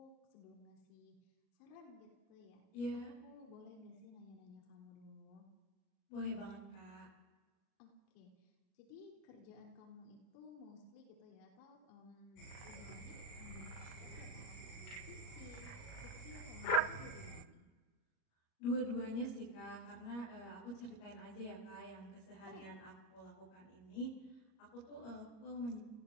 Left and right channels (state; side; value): late; right; 38 ms